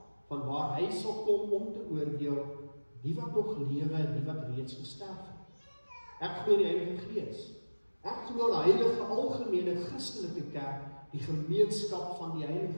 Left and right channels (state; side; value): inverted; both; correlation -1.00